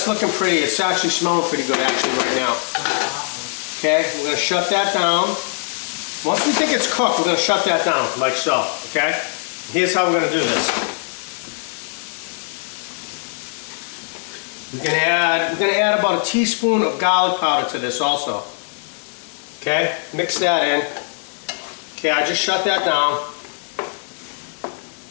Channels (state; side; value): silent; right; 65 dB below the other